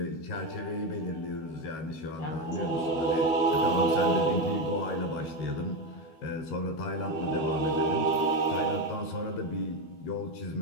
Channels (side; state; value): right; late; 12 ms